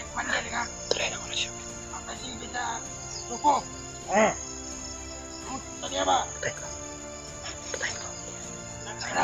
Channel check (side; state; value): both; identical; correlation 1.00